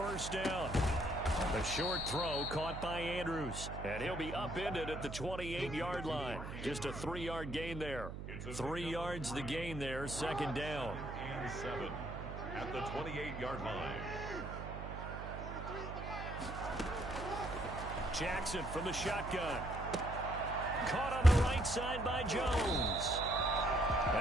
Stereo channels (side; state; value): right; noise; hum, 8 dB below the sound